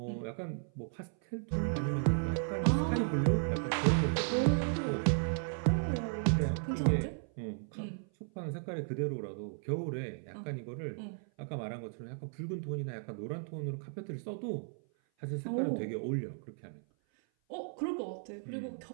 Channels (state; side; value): silent; left; 54 dB below the other